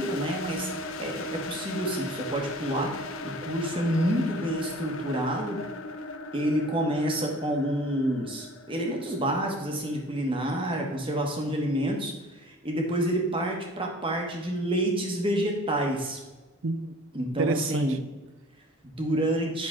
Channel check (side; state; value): both; normal; correlation 0.47